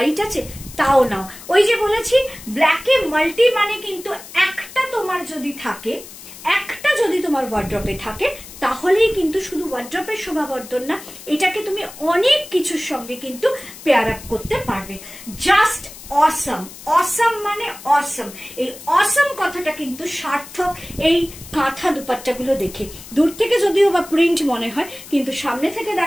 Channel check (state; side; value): noise; left; hiss, 16 dB below the sound